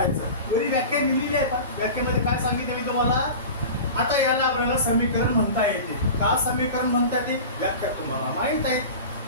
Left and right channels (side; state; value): both; inverted; correlation -0.33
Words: वरी व्याख्या लिहिलेली आहे. पण व्याख्यामध्ये काय सांगितलं मी तुम्हाला. आता याला आपल्याला समीकरण म्हणता येते. का समीकरण म्हणता येते व्याख्या तुम्हाला माहित आहे.